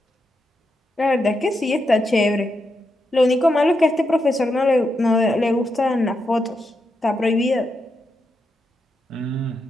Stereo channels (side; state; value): both; normal; correlation 0.84